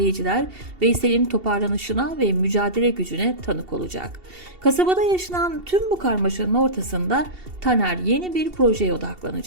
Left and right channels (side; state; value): left; late; 2.7 ms